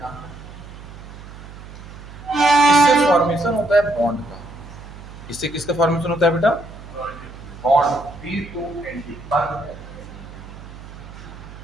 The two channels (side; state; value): right; noise; hum, 15 dB below the sound